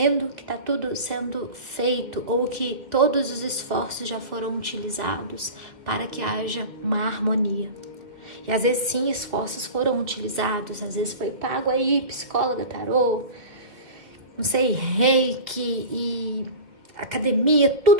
que está tudo sendo feito ou que todos os esforços já foram utilizados para que haja uma harmonia. E às vezes sim, esforços foram utilizados, às vezes foi pago aí, psicóloga, tarô, não sei, reiki e academia,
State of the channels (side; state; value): left; late; 2.1 ms